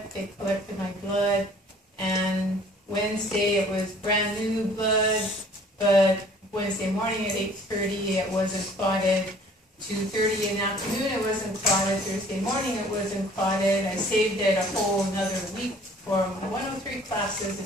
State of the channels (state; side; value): normal; both; correlation 0.53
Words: they collected my blood, and Wednesday it was brand new blood, but Wednesday morning at 8:30 it wasn't clotted. 2:30 in the afternoon it wasn't clotted. Thursday morning it wasn't clotted. I saved it a whole another week for my 103 classes.